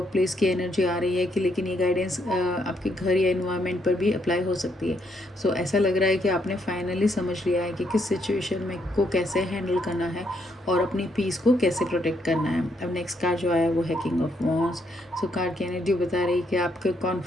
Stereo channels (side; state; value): both; normal; correlation 0.74